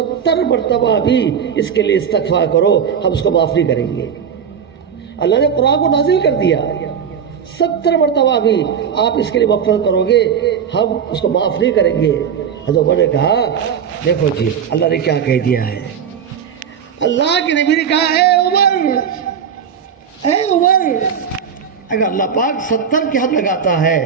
مرتبہ بھی اس کے لیے استغفار کرو ہم اس کو معاف نہیں کریں گے. اللہ نے قرآن کو نازل کر دیا, 70 مرتبہ بھی آپ اس کے لیے مغفرت کرو گے ہم اس کو معاف نہیں کریں گے. حضرت عمر نے کہا دیکھو جی اللہ نے کیا کہہ دیا ہے. اللہ کے نبی نے کہا اے عمر اگر اللہ پاک 70 کی حد لگاتا ہے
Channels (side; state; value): left; quieter; 7.5 dB